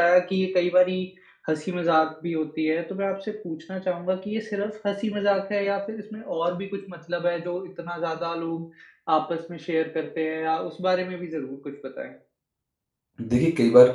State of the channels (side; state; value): both; identical; correlation 1.00